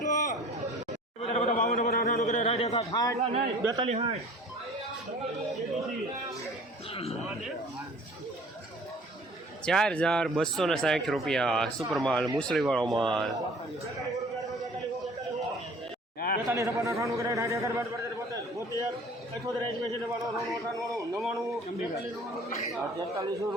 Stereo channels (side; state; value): both; normal; correlation 0.49